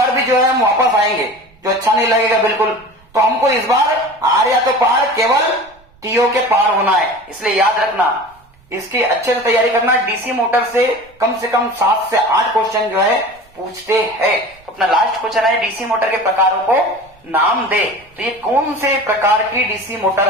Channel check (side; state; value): right; noise; rumble, 30 dB below the sound